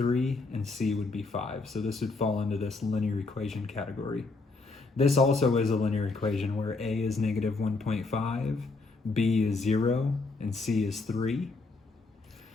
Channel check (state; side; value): quieter; right; 3.7 dB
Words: and c would be 5. So this would fall into this linear equation category. This also is a linear equation where a is -1.5, b is 0, and c is 3.